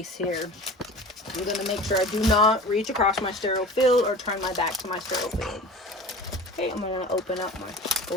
here. I'm going to make sure I do not reach across my sterile field or turn my back to my sterile field. Okay, I'm going to open up my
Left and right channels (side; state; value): both; normal; correlation 0.38